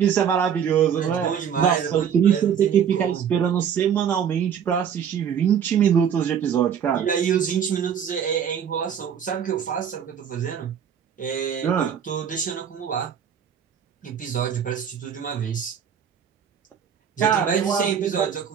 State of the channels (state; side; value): quieter; left; 8.1 dB